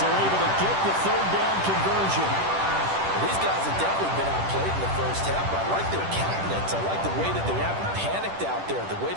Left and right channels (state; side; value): late; left; 10 ms